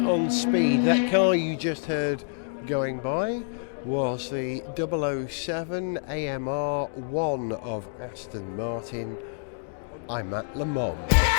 Speed. That car you just heard going by was the 007 AMR 1 of Aston Martin. I'm at Le Mans.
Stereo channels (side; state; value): right; silent; digital silence